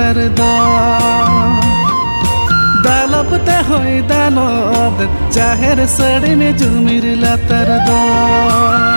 দ দালবতে হয় দালব জাহের সড়ি মে জুমির লাতার দ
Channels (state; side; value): inverted; both; correlation -1.00